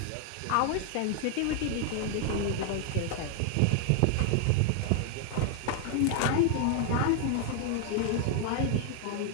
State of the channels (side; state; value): both; different; correlation 0.00